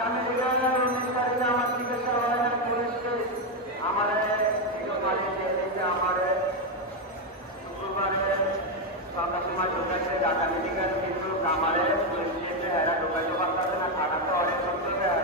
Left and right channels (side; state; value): both; normal; correlation 0.06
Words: মেডিকেল 19 তারিখে আমার চিকিৎসা হয় নাই। পুলিশকে আমার আমার শুক্রবারে সন্ধ্যার সময় ঢোকাইছে ঢাকা মেডিকেল, কিন্তু আমার পুলিশ এরা ঢোকাইতে পারতেছে না। থাকাতে অনেক সত্য